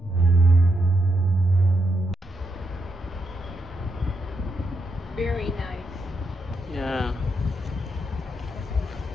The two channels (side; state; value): both; normal; correlation 0.81